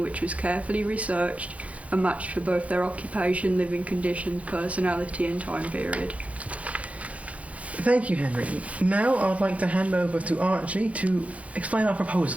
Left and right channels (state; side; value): late; left; 0.066 ms